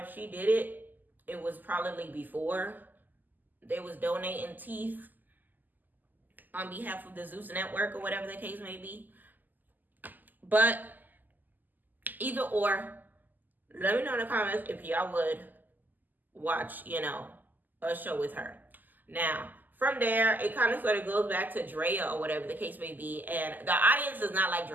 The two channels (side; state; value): left; late; 0.085 ms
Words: she did it, it was probably before they was donating teeth on behalf of the Zeus Network or whatever the case may be. But either or, let me know in the comments if y'all would watch, a show with her. Now, from there, it kind of sort of goes back to Drea or whatever the case may be. And the audience does not like